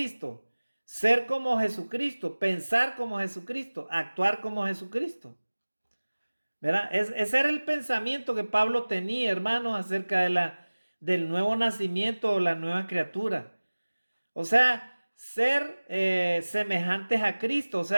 Ser como Jesucristo, pensar como Jesucristo, actuar como Jesucristo. ¿Verdad? Ese era el pensamiento que Pablo tenía, hermanos, acerca del nuevo nacimiento o la nueva criatura. O sea, ser semejantes a Cristo, o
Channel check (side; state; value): both; inverted; correlation -1.00